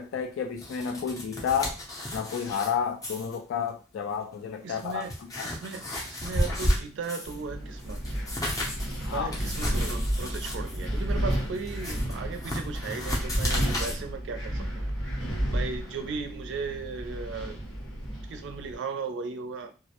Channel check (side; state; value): both; normal; correlation 0.51